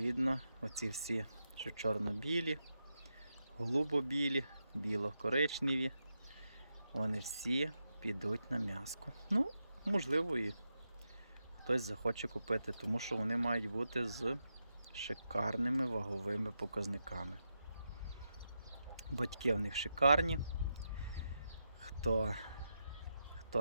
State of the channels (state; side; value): inverted; both; correlation -0.86